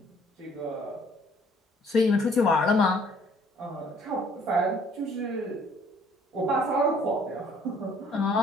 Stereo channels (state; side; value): normal; both; correlation 0.60